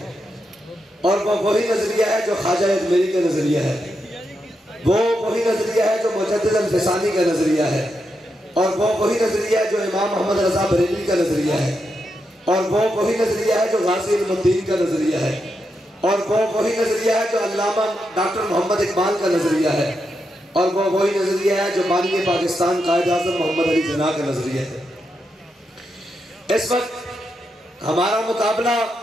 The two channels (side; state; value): both; normal; correlation 0.84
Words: اور وہ وہی نظریہ ہے جو خواجہ اجمیری کا نظریہ ہے، وہ وہی نظریہ ہے جو مجدد الفسانی کا نظریہ ہے، اور وہ وہی نظریہ ہے جو امام محمد رضا بریلوی کا نظریہ ہے، اور وہ وہی نظریہ ہے جو غازی علم الدین کا نظریہ ہے، اور وہ وہی نظریہ ہے جو علامہ ڈاکٹر محمد اقبال کا نظریہ ہے، اور وہ وہی نظریہ ہے جو بانی پاکستان قائد اعظم محمد علی جناح کا نظریہ ہے۔ اس وقت ہمارا مقابلہ